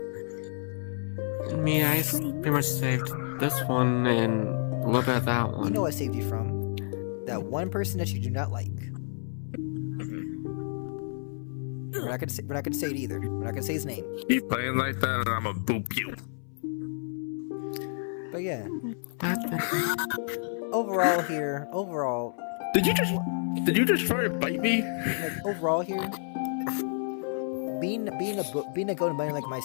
Me, I pretty much saved this one and a little bit of that one. You know what I saved you from? That one person that you do not like. We're not gonna say it either. We're not gonna say his name. Keep playing like that and I'ma boop you. But yeah, What? overall, Did you just try to bite me? like overall here, being a golden bunny like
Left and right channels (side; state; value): right; silent; 58 dB below the other